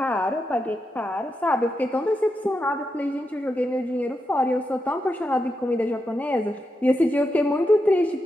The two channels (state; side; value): normal; both; correlation 0.86